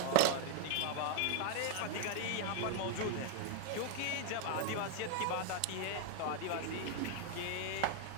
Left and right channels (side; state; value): both; different; correlation 0.00